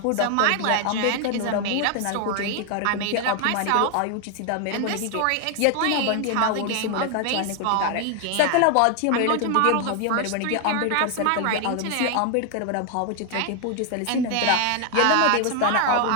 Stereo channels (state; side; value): different; both; correlation 0.00